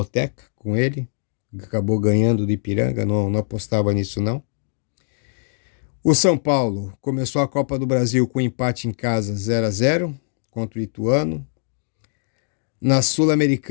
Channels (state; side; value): silent; right; digital silence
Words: com ele. Acabou ganhando do Ipiranga, não apostava nisso não. O São Paulo começou a Copa do Brasil com empate em casa 0-0 contra o Ituano. Na